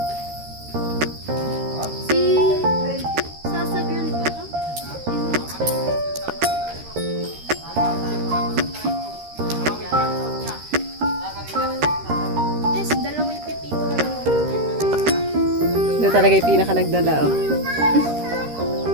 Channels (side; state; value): left; late; 13 ms